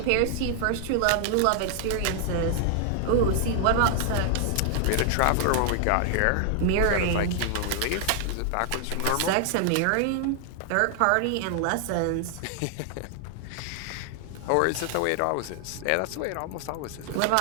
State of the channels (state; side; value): different; both; correlation 0.00